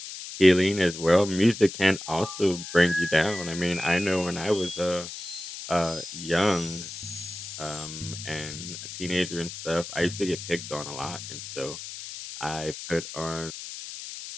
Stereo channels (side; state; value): left; noise; hiss, 10 dB below the sound